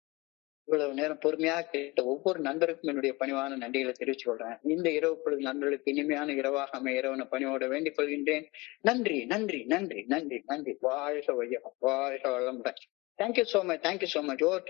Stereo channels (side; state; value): right; quieter; 23.6 dB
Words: இவ்வளவு நேரம் பொறுமையாக கேட்ட ஒவ்வொரு நண்பருக்கும் என்னுடைய பணிவான நன்றிகளை தெரிவித்துக் கொள்றேன். இந்த இரவு பொழுது நண்பர்களுக்கு இனிமையான இரவாக அமைய இரவன பணியோட வேண்டிக் கொள்கின்றேன். நன்றி நன்றி நன்றி நன்றி நன்றி. வாழ்க வையம், வாழ்க வளமுடன். Thank you so much, thank you so much. Over